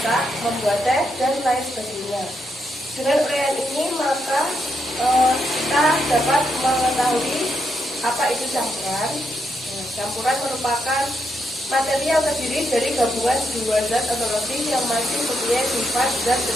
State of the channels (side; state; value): both; normal; correlation 0.81